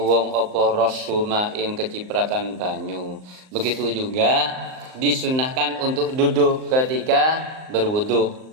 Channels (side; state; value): left; late; 38 ms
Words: apa rasuma ing kecipratan banyu. Begitu juga disunahkan untuk duduk ketika berwudu,